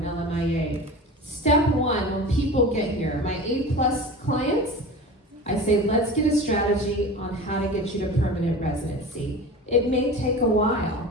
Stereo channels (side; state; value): both; normal; correlation 0.33